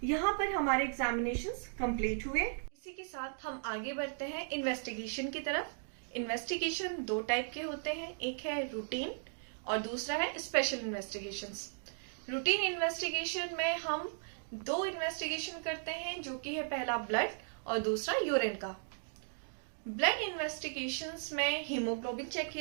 यहाँ पर हमारे एग्जामिनेशंस कंप्लीट हुए। इसी के साथ हम आगे बढ़ते हैं इन्वेस्टिगेशन की तरफ। इन्वेस्टिगेशन 2 टाइप के होते हैं, एक है रूटीन और दूसरा है स्पेशल इन्वेस्टिगेशंस। रूटीन इन्वेस्टिगेशन में हम 2 इन्वेस्टिगेशन करते हैं, जो कि है पहला ब्लड और दूसरा यूरिन का। ब्लड इन्वेस्टिगेशंस में हीमोग्लोबिन चेक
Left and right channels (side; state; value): left; silent; digital silence